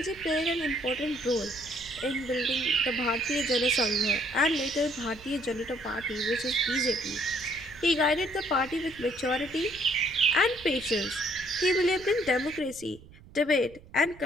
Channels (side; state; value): right; noise; rumble, 21 dB below the sound